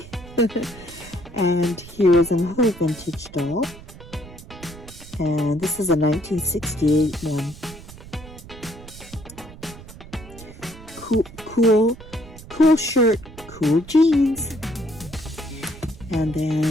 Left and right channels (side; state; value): right; noise; rumble, 17 dB below the sound